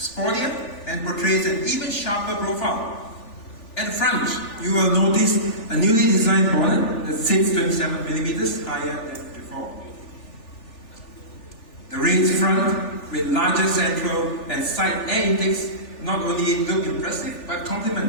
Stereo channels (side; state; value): right; late; 3.4 ms